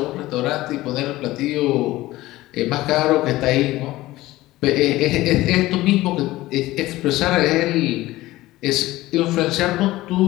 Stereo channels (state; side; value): quieter; right; 17.4 dB